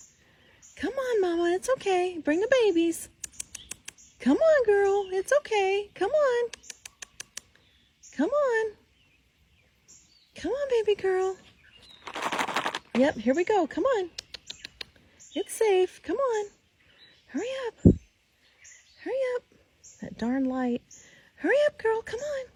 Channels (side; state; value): both; identical; correlation 1.00